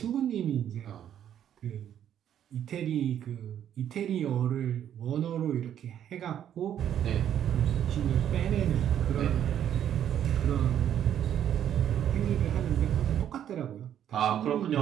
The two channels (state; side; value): quieter; left; 10.1 dB